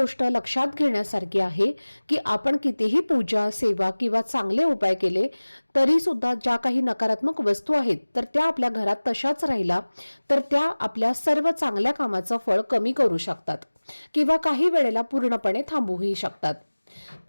लक्षात घेण्यासारखी आहे की आपण कितीही पूजा, सेवा किंवा चांगले उपाय केले तरी सुद्धा ज्या काही नकारात्मक वस्तू आहेत तर त्या आपल्या घरात तशाच राहिला तर त्या आपल्या सर्व चांगल्या कामाचं फळ कमी करू शकतात किंवा काही वेळेला पूर्णपणे थांबवूही शकतात.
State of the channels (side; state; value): both; inverted; correlation -1.00